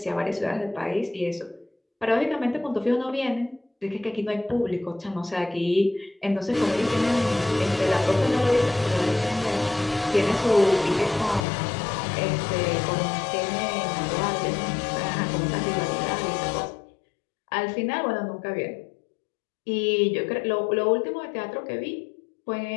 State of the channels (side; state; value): right; drops out; at 11.5 s